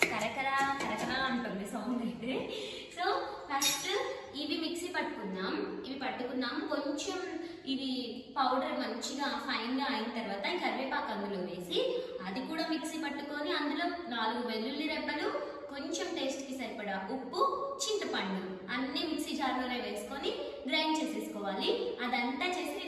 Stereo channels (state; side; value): identical; both; correlation 1.00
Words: కరకరా కరకరా అంటుంది సౌండ్ అయితే. సో ఫస్ట్ ఇవి మిక్సీ పట్టుకున్నాం. కొంచెం ఇవి పౌడర్ మంచిగా ఫైన్గా అయిన తర్వాత ఈ కరివేపాకు అందులో వేసి అది కూడా మిక్సీ పట్టుకొని అందులో 4 వెల్లుల్లి రెబ్బలు, కొంచెం టేస్ట్కి సరిపడా ఉప్పు, చింతపండు అన్ని మిక్సీ జార్లోనే వేసుకొని గ్రైండ్ చేసేసుకోవాలి. అదంతా చేసి